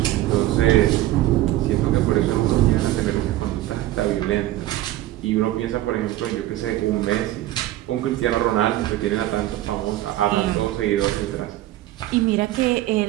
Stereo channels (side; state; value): left; quieter; 15.0 dB